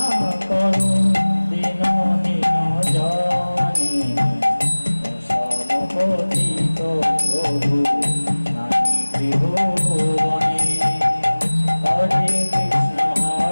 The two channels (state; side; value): inverted; both; correlation -1.00